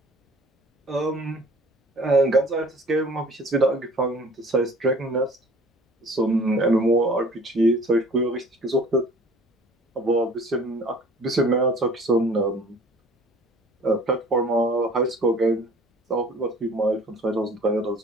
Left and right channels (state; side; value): normal; both; correlation 0.50